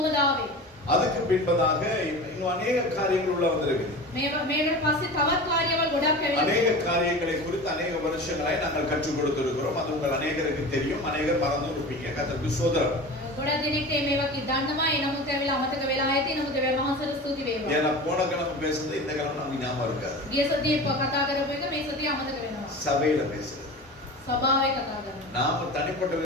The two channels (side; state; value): both; normal; correlation 0.33